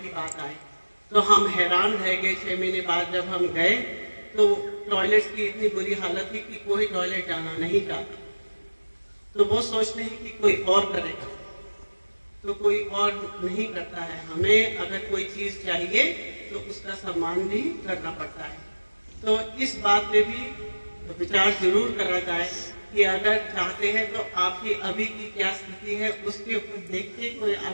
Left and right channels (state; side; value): inverted; both; correlation -1.00